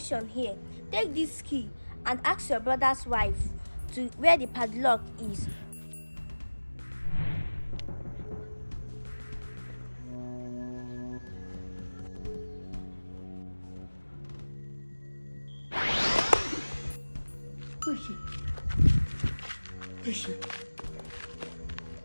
here. Take this key and ask your brother's wife to where the padlock is. Where is she? Where is she?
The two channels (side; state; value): both; inverted; correlation -1.00